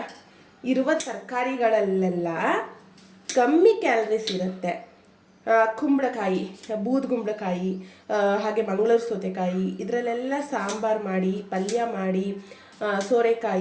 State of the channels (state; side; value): identical; both; correlation 1.00